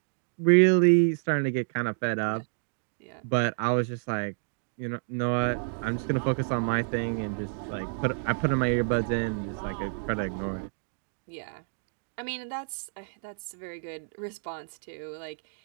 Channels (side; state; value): left; silent; digital silence